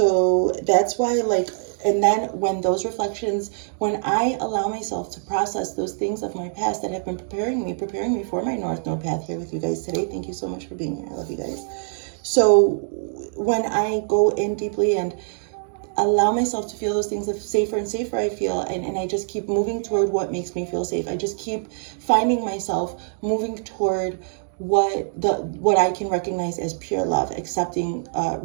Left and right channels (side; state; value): left; silent; digital silence